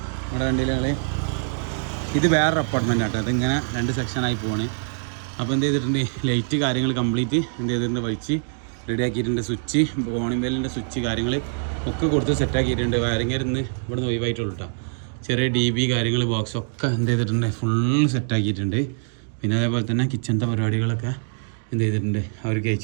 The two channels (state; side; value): silent; left; digital silence